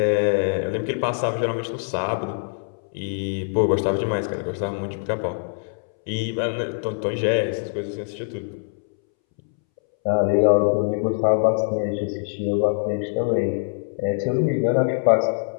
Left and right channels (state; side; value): silent; right; 63 dB below the other